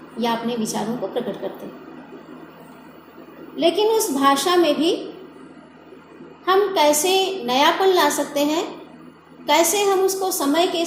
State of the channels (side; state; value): both; identical; correlation 1.00